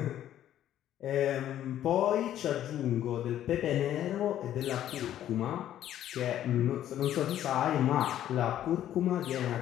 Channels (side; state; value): right; quieter; 11.7 dB